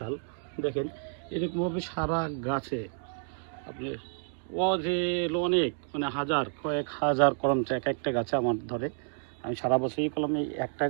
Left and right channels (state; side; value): silent; left; 58 dB below the other